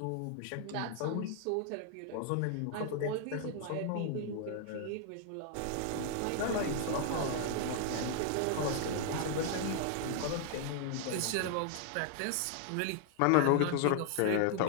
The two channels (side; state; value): both; different; correlation 0.00